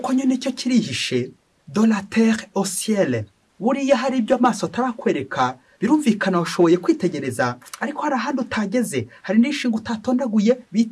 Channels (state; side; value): identical; both; correlation 1.00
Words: nyine cyo kirihishe, de la terre au ciel. Buriya hari ibyo amaso atarakwereka, birumvikana washoboye kwitegereza, ariko hari ahandi utageze, hari n'ishinga utatondaguye